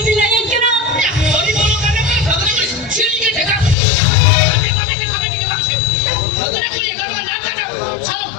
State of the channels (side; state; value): right; drops out; at 3.8 s